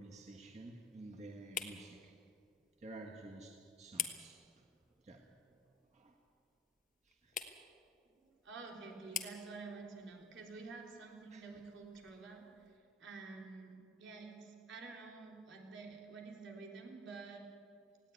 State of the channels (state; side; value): normal; both; correlation 0.45